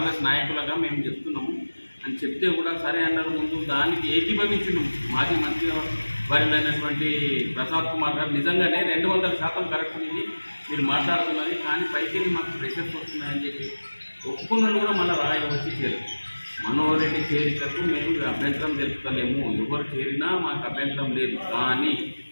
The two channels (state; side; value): inverted; both; correlation -1.00